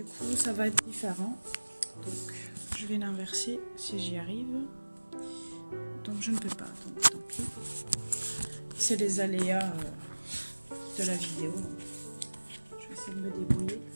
coup, ça va être différent. Donc, je vais l'inverser si j'y arrive. Donc, je ne peux pas, donc tant pis. C'est les aléas de la vidéo. Je vais essayer de me débrouiller.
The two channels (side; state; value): both; inverted; correlation -1.00